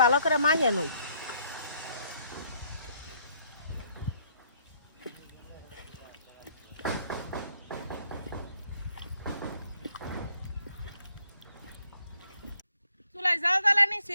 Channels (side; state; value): both; inverted; correlation -0.68